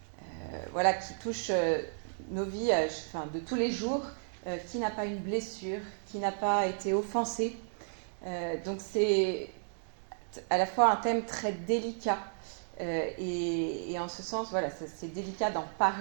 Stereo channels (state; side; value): silent; left; digital silence